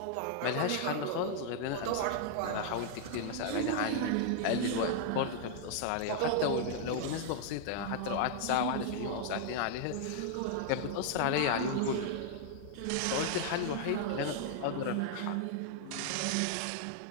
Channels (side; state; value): both; different; correlation -0.01